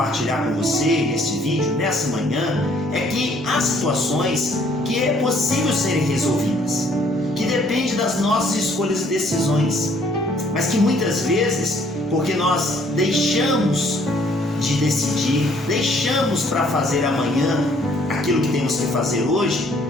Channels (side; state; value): both; normal; correlation 0.62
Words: com você neste vídeo, nessa manhã, é que há situações que é possível serem resolvidas, que depende das nossas escolhas e decisões, mas que muitas vezes, porque nós deixamos de decidir, deixamos para fazer amanhã aquilo que temos que fazer hoje,